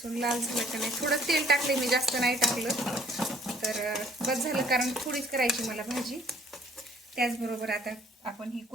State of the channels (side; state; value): both; normal; correlation 0.59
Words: लाल झालं का नाही. थोडं तेल टाकले मी, जास्त नाही टाकलं तर बस झालं, कारण थोडीच करायची मला भाजी. त्याचबरोबर आता आपण ही